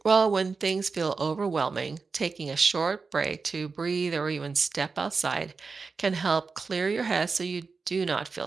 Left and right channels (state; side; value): quieter; left; 4.6 dB